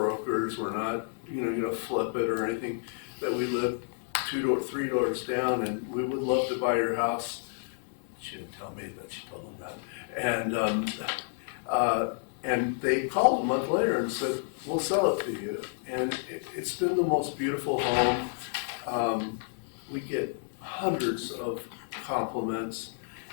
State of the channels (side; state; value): right; silent; 58 dB below the other